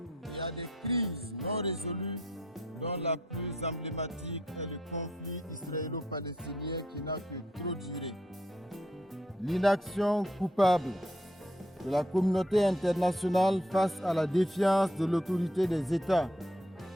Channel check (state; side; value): normal; both; correlation 0.70